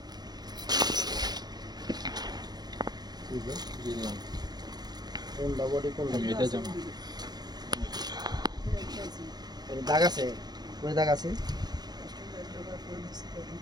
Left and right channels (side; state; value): left; late; 0.20 ms